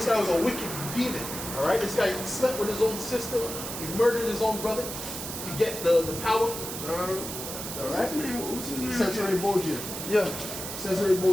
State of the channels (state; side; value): noise; right; hiss, 7 dB below the sound